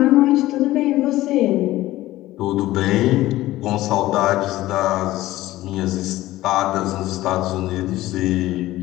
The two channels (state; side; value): quieter; right; 16.3 dB